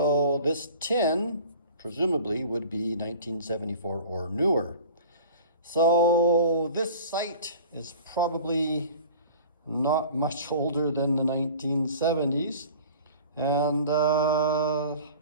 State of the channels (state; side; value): inverted; both; correlation -0.43